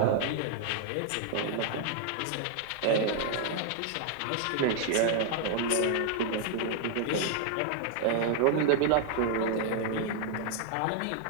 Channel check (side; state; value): both; different; correlation 0.00